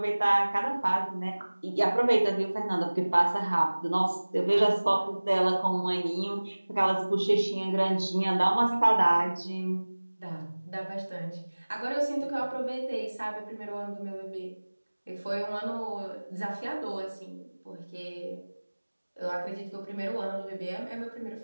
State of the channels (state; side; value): inverted; both; correlation -1.00